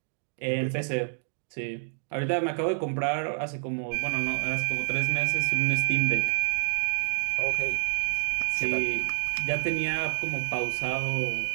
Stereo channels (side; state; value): left; silent; digital silence